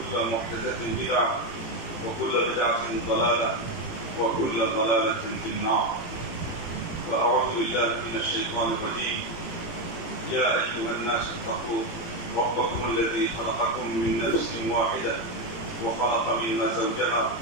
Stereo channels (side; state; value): right; late; 18 ms